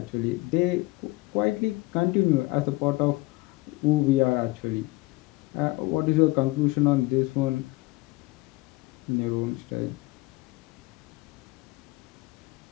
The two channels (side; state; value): right; quieter; 21.9 dB